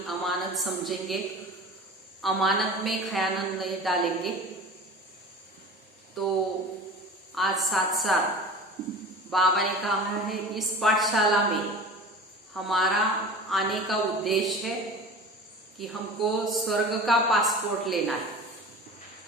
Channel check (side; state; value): both; normal; correlation 0.36